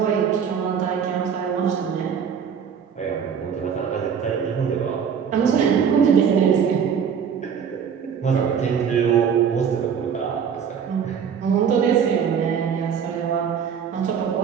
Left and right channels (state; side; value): quieter; left; 7.3 dB